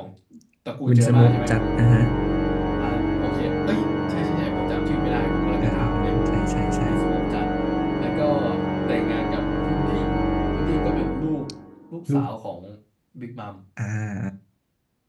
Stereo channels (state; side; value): identical; both; correlation 1.00